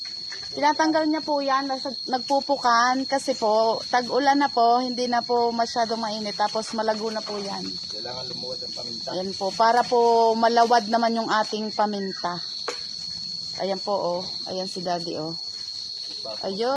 Tinatanggal niya po yan, nagpupukan kasi po, tag-ulan na po, hindi na po masyadong mainit, tapos malago na po yan. Kailangan lumuwad ang paminta. Ayan po, para po malawad naman yung ating paminta. Ayan po, oh. Ayan si Daddy, oh.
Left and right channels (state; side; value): identical; both; correlation 1.00